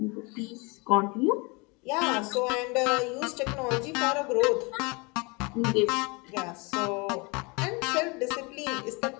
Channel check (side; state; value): right; quieter; 28.6 dB